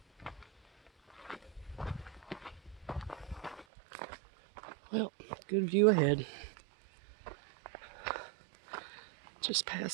Well, good view ahead. Just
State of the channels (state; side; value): drops out; left; at 3.7 s